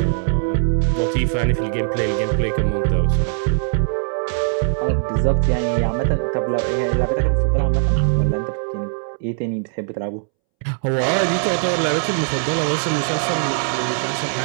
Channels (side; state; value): left; silent; 66 dB below the other